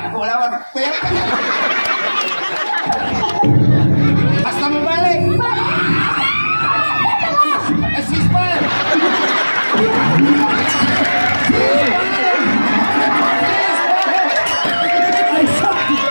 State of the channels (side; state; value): both; inverted; correlation -1.00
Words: lawat, kuya! Basta mo balik! Assist pa! Ay, sak!